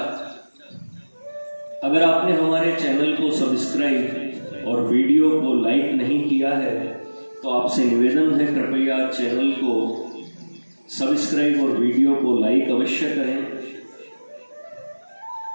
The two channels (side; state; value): both; inverted; correlation -1.00